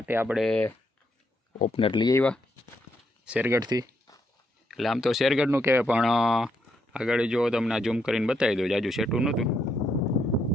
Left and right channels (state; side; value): normal; both; correlation 0.77